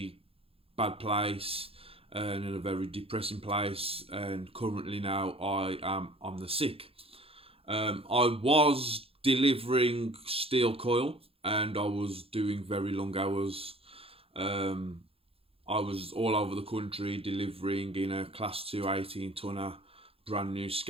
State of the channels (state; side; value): late; left; 0.27 ms